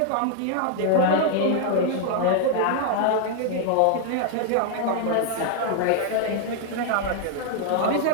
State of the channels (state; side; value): different; both; correlation 0.00